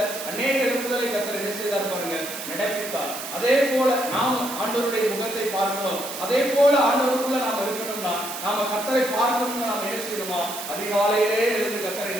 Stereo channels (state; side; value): noise; right; hiss, 8 dB below the sound